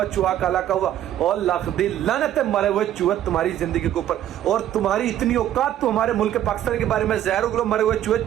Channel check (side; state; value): left; quieter; 11.7 dB